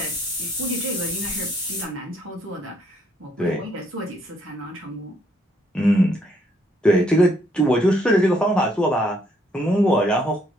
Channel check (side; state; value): both; normal; correlation 0.69